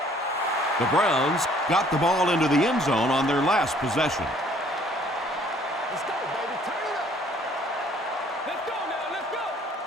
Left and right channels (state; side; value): normal; both; correlation 0.59